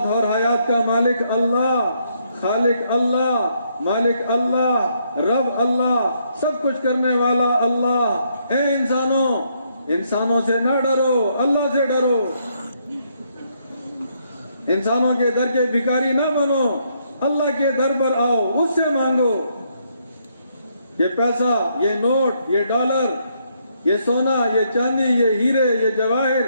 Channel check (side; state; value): both; inverted; correlation -0.73